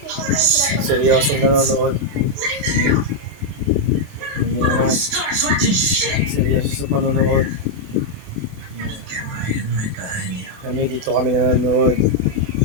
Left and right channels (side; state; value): left; late; 28 ms